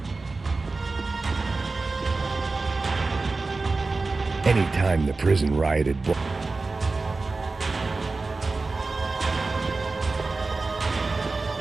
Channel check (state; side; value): quieter; left; 3.7 dB